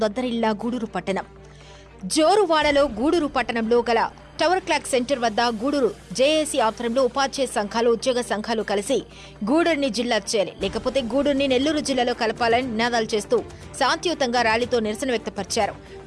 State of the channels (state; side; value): identical; both; correlation 1.00